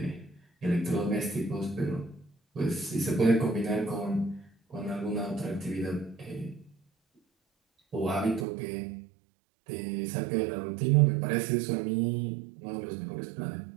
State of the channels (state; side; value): drops out; left; at 8.5 s